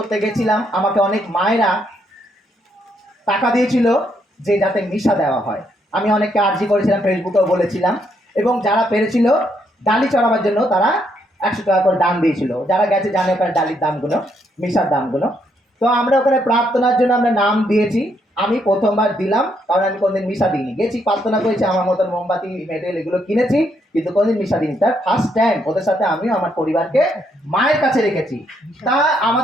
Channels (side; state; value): both; normal; correlation 0.74